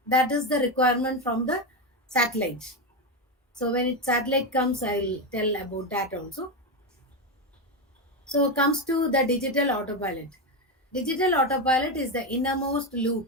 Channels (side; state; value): both; normal; correlation 0.12